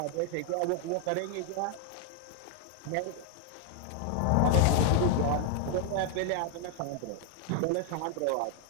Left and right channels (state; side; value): different; both; correlation 0.00